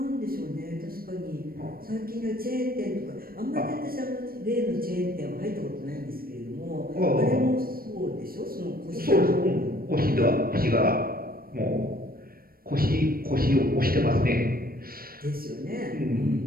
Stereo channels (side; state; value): left; late; 0.43 ms